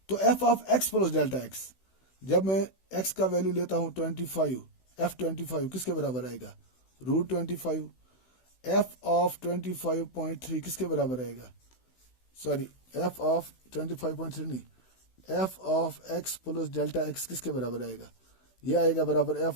तो f of x plus delta x, जब मैं एक्स का वैल्यू लेता हूं 25, एफ 25 किसके बराबर आएगा, रूट 25। एफ ऑफ 25.3 किसके बराबर आएगा, सॉरी एफ ऑफ 25.3 नहीं, f of x plus delta x किसके बराबर आएगा, ये आएगा बराबर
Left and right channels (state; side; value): late; right; 16 ms